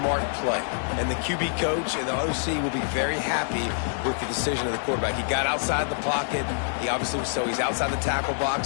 play. And the QB coach and the OC will be very happy with the decision of the quarterback. He got outside the pocket. He obviously was so he's outside the tackle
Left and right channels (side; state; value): right; silent; digital silence